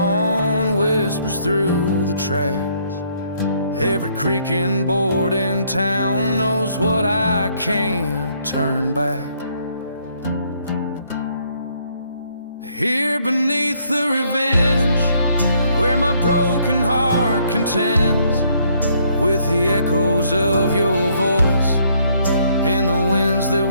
whispers through the tracks. Every creaking board in town knows what I can't turn back. Here beneath the revenge, where my broken heart contends with the echoes of your voice in the winds that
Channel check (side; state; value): both; inverted; correlation -0.68